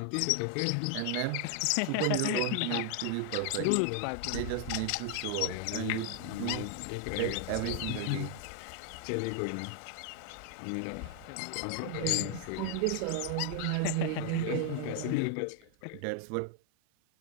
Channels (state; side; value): different; both; correlation 0.00